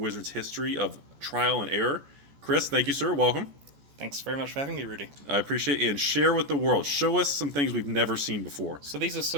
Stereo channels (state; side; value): late; left; 14 ms